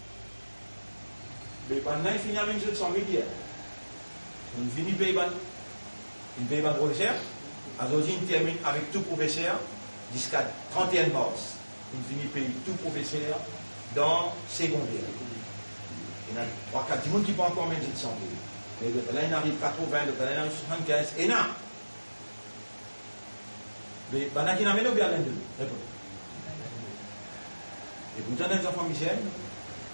Mais pendant il finit à 100 000 hier. On finit payer une paye par professeur. Aujourd'hui, on termine avec tout professeur jusqu'à 31 mars. On finit payer tout professeur dans secondaire. Il y a 3-4 personnes qui vont encore mettre 100 000. Et là, il arrive 80, là, il arrive 75, et là. Mais il y a qui n'amènent bien l'un de nous. Et pourtant, les enfants misères,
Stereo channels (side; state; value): both; inverted; correlation -1.00